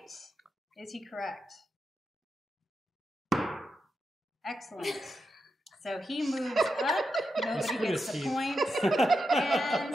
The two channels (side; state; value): both; normal; correlation 0.87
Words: Is he correct? Excellent. So he moves up. Nobody Screw gets the Steve. points,